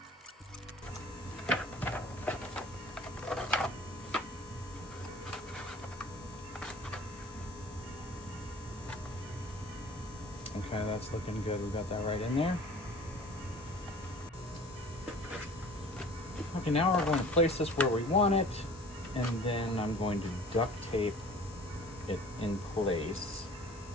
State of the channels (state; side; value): normal; both; correlation 0.46